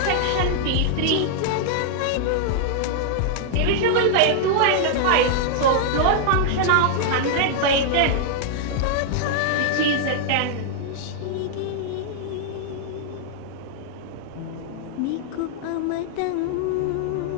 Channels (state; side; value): different; both; correlation -0.01